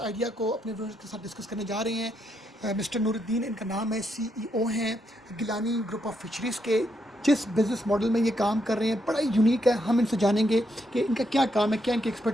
आइडिया को अपने व्यूअर्स के साथ डिस्कस करने जा रहे हैं। मिस्टर नूरुद्दीन इनका नाम है, सीईओ हैं गिलानी ग्रुप ऑफ फिशरीज़ के। जिस बिज़नेस मॉडल में ये काम कर रहे हैं बड़ा यूनिक है। हम इनसे जानेंगे कि इनका क्या काम है, क्या इनकी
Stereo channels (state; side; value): normal; both; correlation 0.78